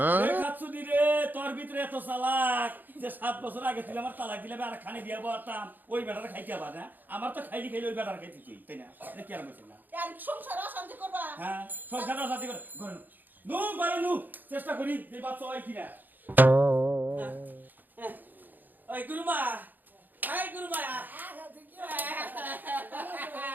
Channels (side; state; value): left; late; 0.087 ms